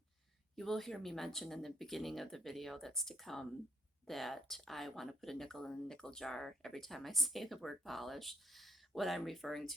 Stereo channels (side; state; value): both; normal; correlation 0.65